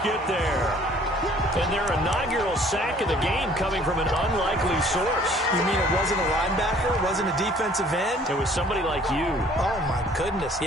get there. And their inaugural sack of the game coming from an unlikely source. You mean it wasn't a linebacker? It wasn't a defensive end? It was somebody like you. Oh, my goodness.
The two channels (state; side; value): normal; both; correlation 0.56